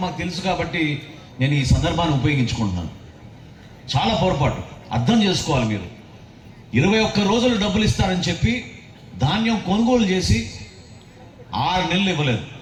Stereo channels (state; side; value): identical; both; correlation 1.00